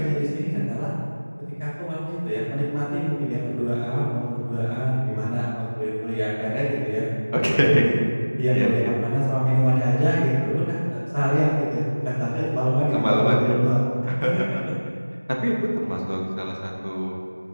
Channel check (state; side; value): inverted; both; correlation -1.00